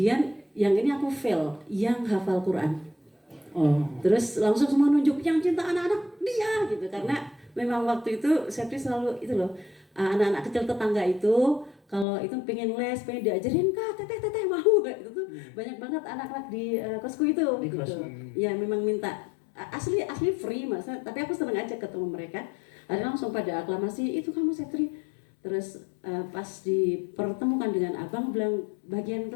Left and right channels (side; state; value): right; drops out; at 12.1 s